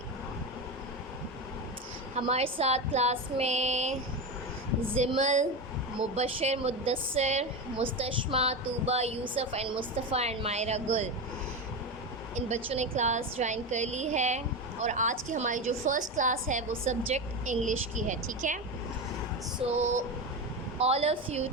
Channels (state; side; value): normal; both; correlation 0.19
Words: हमारे साथ class में Zimal, Mubashir, Muddassir, Mustashma, Tooba, Yusuf and Mustafa and Maira Gul, इन बच्चों ने क्लास ज्वाइन कर ली है। और आज की हमारी जो फ़र्स्ट क्लास है वो सब्जेक्ट इंग्लिश की है, ठीक है। So all of you